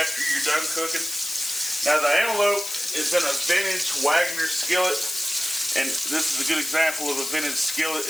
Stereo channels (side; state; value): left; noise; hiss, 6 dB below the sound